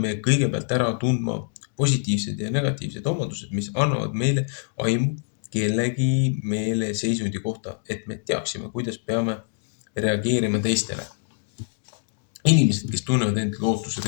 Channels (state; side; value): silent; right; digital silence